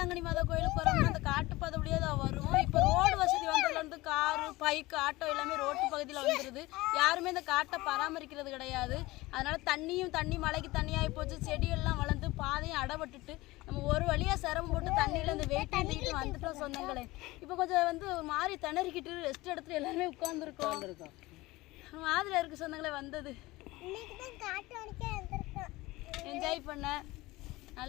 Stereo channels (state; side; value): quieter; right; 20.0 dB